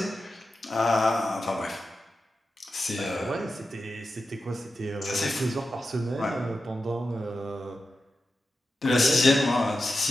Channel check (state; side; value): normal; both; correlation 0.91